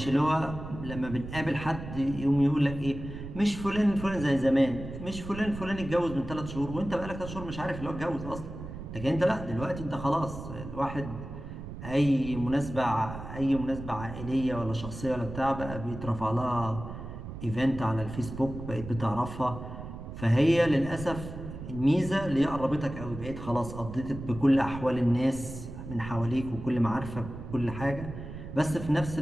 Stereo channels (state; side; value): noise; right; rumble, 10 dB below the sound